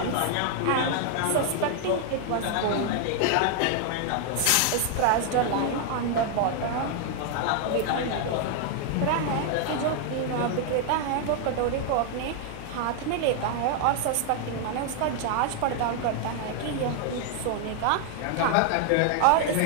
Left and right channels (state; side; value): different; both; correlation 0.00